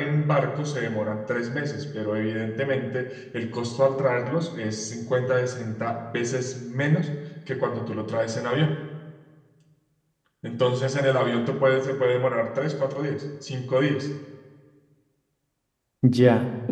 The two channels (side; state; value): both; identical; correlation 1.00